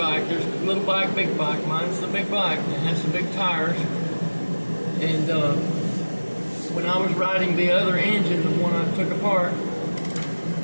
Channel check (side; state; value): both; inverted; correlation -1.00